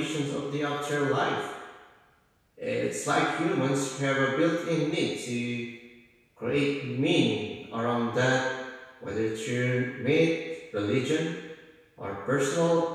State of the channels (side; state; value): both; identical; correlation 1.00